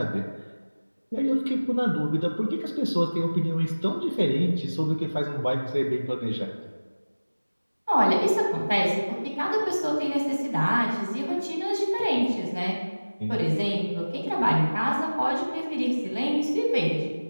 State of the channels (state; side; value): inverted; both; correlation -1.00